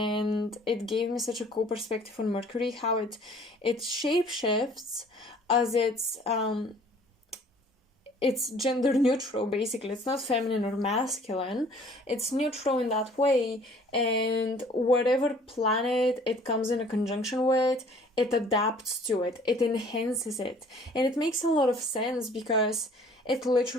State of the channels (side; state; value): both; normal; correlation 0.54